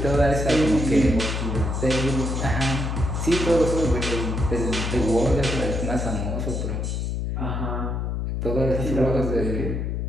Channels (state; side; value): noise; left; hum, 2 dB below the sound